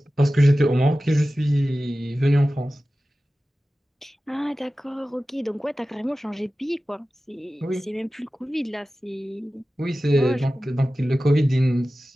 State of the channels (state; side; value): normal; both; correlation 0.95